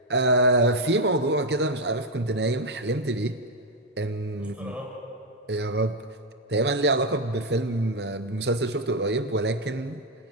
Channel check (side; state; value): both; normal; correlation 0.05